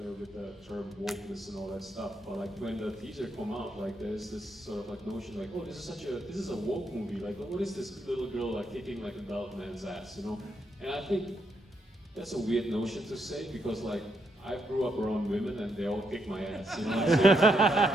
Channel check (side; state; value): both; normal; correlation 0.78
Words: with the term wokeness and all that stuff. But like when the teaser come out, like there's this sort of like notion like, oh, this is a woke movie. Like, what is this little girl like kicking like adult man's ass, you know? And I think that's a weird notion to say because like I grew up around women and they all kick my ass, you know what I'm saying?